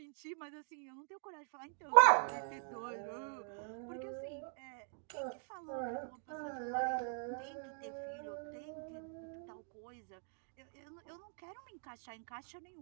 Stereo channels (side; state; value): left; silent; 50 dB below the other